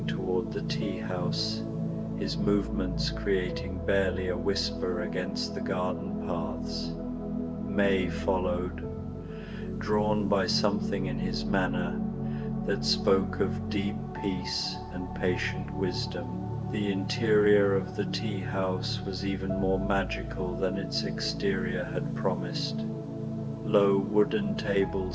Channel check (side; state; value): both; identical; correlation 1.00